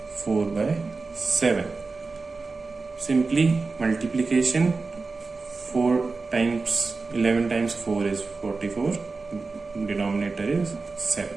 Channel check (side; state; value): left; quieter; 4.0 dB